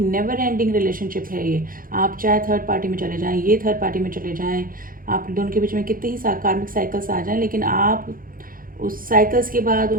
एंडिंग रिलेशनशिप है ये। आप चाहे थर्ड पार्टी में चले जाएं, ये थर्ड पार्टी में चले जाएं, आप दोनों के बीच में कितने ही कार्मिक साइकिल्स आ जाएं, लेकिन आप उस साइकिल्स के बाद,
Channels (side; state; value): left; late; 0.41 ms